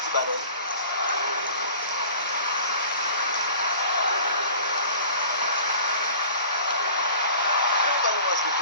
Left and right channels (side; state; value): both; inverted; correlation -0.44